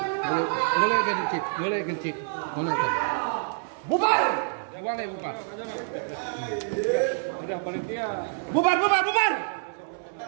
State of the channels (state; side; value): silent; left; 60 dB below the other